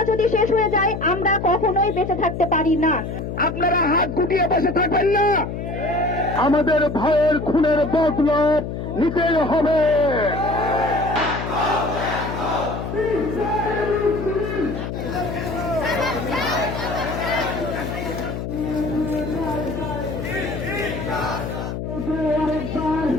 যদি শেষ হয়ে যায় আমরা কখনোই বেঁচে থাকতে পারি না। আপনারা হাত গুটিয়ে বসে থাকবেন না। আমাদের ভাইয়ের খুনের বদলা নিতেই হবে।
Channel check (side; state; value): left; noise; hum, 5 dB below the sound